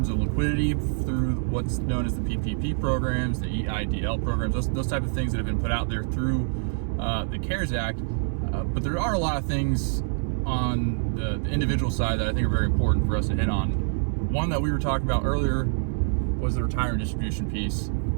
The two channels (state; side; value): silent; left; digital silence